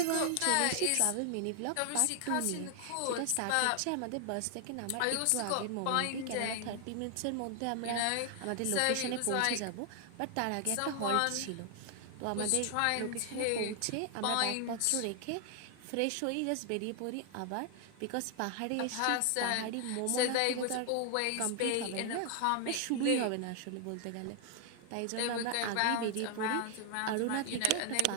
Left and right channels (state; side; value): different; both; correlation 0.00